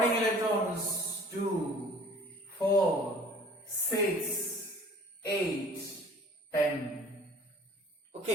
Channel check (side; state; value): both; normal; correlation 0.49